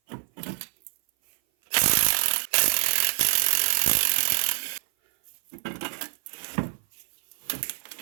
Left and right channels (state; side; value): silent; left; 56 dB below the other